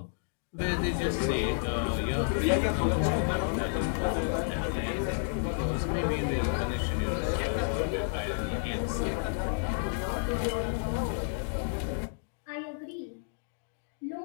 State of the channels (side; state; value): right; silent; digital silence